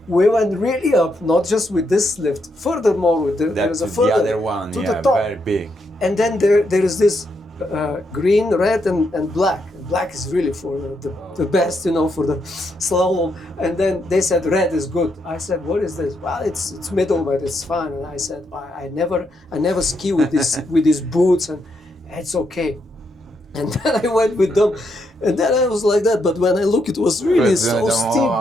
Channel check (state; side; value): normal; both; correlation 0.79